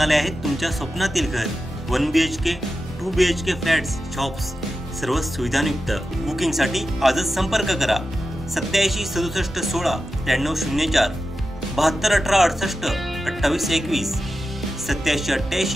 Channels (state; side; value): normal; both; correlation 0.91